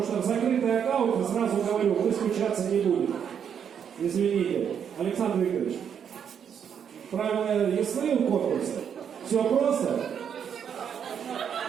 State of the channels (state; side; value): quieter; left; 8.0 dB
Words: что в закрытый аккаунт, сразу говорю, вы скучаться не будете. Извините. Александр Викторович, правила ясны у конкурса? Все просто?